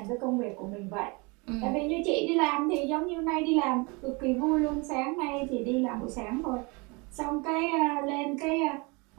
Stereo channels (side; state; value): left; quieter; 28.4 dB